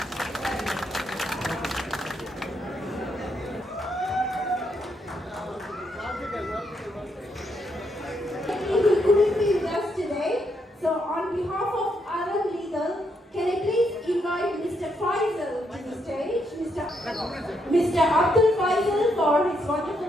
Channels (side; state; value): both; normal; correlation 0.77